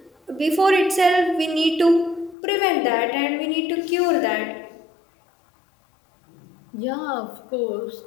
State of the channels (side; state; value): right; drops out; at 2.4 s